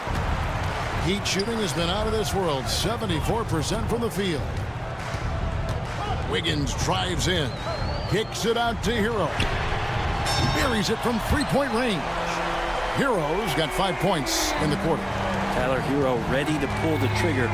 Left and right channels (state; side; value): identical; both; correlation 1.00